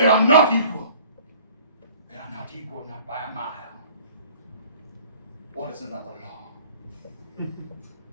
are not equal. They are not equal, not by a mile. What is another law?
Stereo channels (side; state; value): both; inverted; correlation -0.51